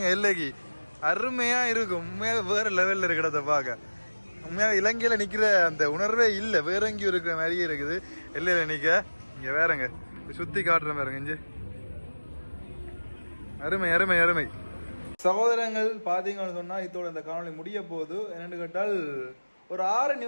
எல்லைக்கு அருமையா இருக்கும். உண்மையாக வேற லெவல்ல இருக்கிறத பார்க்க. உண்மையாக இலங்கையில நிக்கிற அந்த உணர்வே இல்லை. வேற எங்கேயும் இருக்கிற மாதிரியே இருக்குது எல்லையில நிக்க. இங்க வேறங்க சுத்தி காட்டுற மாதிரிங்க. இங்க அருமை அருமை அருமை. சகோதரங்கள் பார்த்தீங்கன்னு சொன்னால் இதோட இந்த காணொலி முடிய போகுது. என்னென்னு கேட்டால் ஒரு 6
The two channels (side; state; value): both; inverted; correlation -1.00